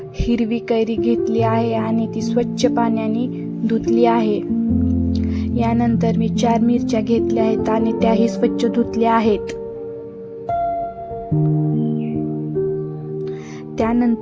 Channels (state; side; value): identical; both; correlation 1.00